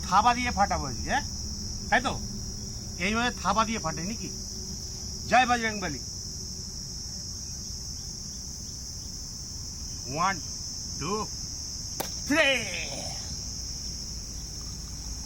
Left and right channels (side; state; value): both; identical; correlation 1.00